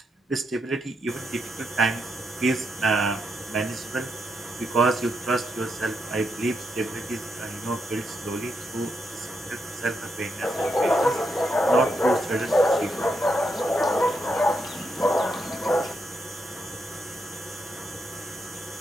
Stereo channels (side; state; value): both; normal; correlation 0.82